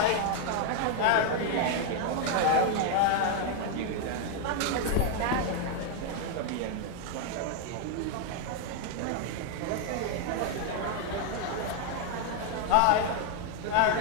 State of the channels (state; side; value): different; both; correlation 0.00